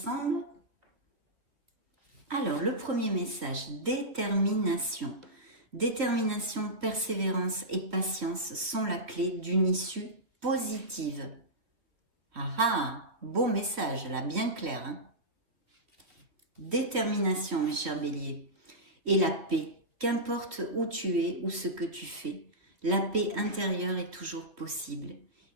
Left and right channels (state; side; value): late; left; 3.1 ms